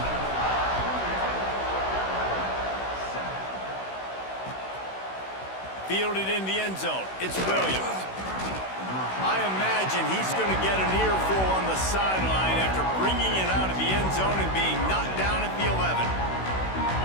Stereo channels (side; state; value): right; late; 16 ms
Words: Fielded in the end zone. It's Williams. I imagine he's going to get an earful on the sideline after bringing it out of the end zone and being knocked down at the 11.